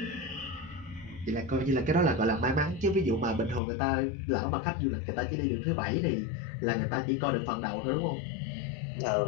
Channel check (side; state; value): right; drops out; at 3.6 s